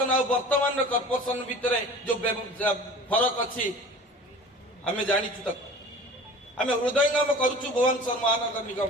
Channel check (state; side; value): normal; both; correlation 0.41